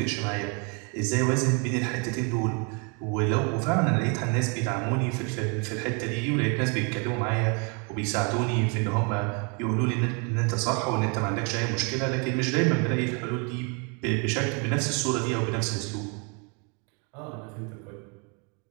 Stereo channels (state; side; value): quieter; left; 34.6 dB